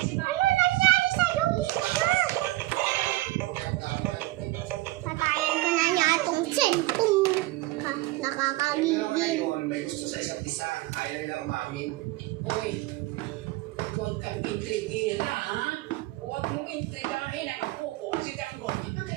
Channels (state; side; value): quieter; left; 18.6 dB